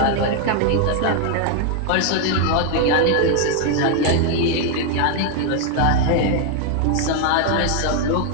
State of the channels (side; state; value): both; different; correlation 0.00